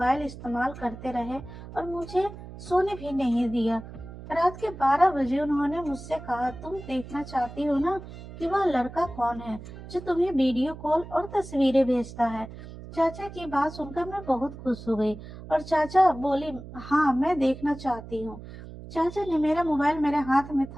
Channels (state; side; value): noise; right; hum, 14 dB below the sound